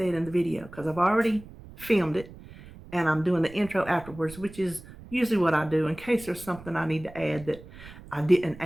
in the video because I've already filmed it. And I'm doing the intro afterwards, which is usually what I do in case there's something I need to add that I didn't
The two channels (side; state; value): right; noise; rumble, 18 dB below the sound